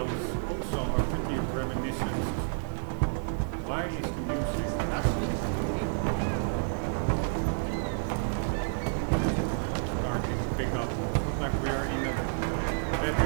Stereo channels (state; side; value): silent; left; digital silence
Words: also are pretty reminiscent. Why is the music starting to pick up? It's not like we are in a